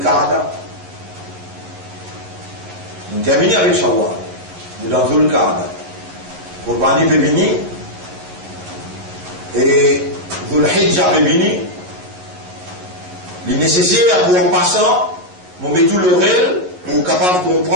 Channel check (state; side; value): late; left; 11 ms